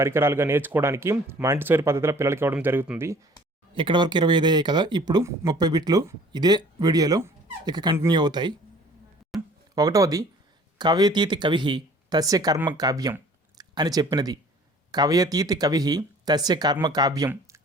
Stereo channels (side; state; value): both; normal; correlation 0.51